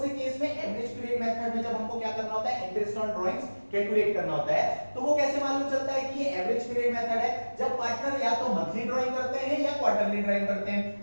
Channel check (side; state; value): both; inverted; correlation -1.00